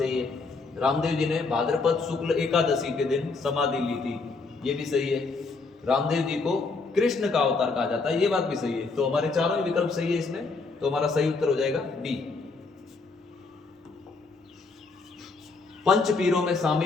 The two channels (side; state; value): right; quieter; 4.1 dB